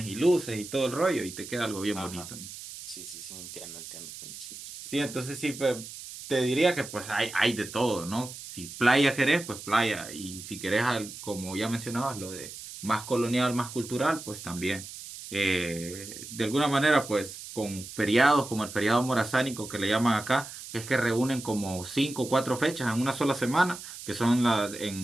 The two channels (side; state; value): right; noise; hiss, 12 dB below the sound